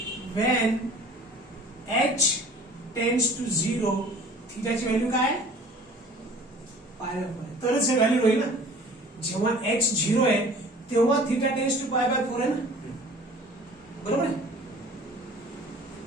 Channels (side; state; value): both; normal; correlation 0.47